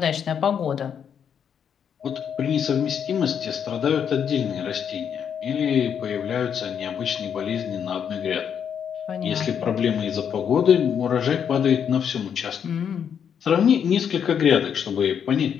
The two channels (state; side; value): quieter; right; 7.9 dB